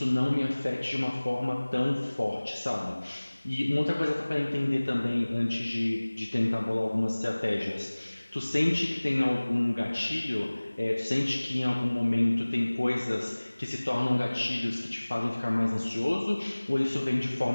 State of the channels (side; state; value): both; inverted; correlation -1.00